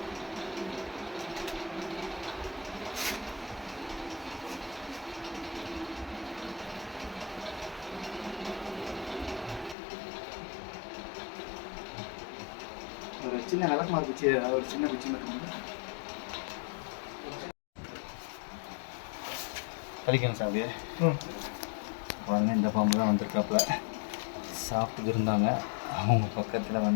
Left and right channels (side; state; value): right; drops out; at 9.8 s